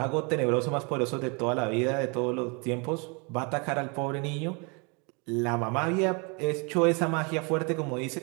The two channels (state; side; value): quieter; left; 32.4 dB